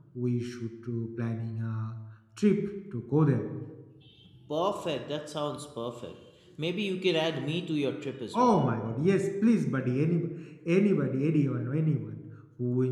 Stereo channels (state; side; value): identical; both; correlation 1.00